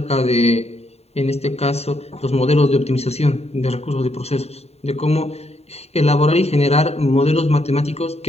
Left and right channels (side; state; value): right; late; 0.30 ms